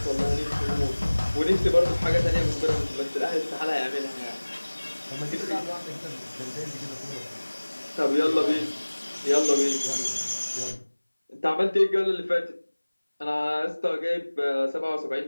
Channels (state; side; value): inverted; both; correlation -1.00